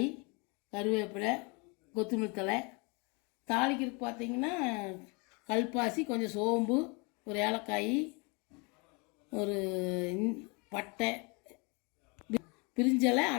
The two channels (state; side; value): quieter; right; 30.7 dB